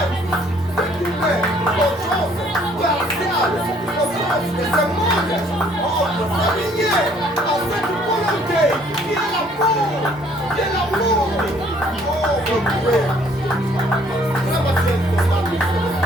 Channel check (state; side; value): normal; both; correlation 0.61